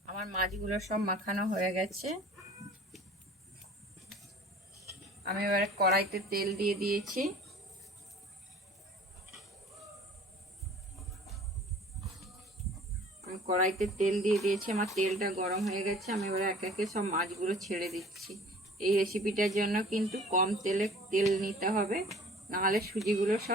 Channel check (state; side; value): normal; both; correlation 0.48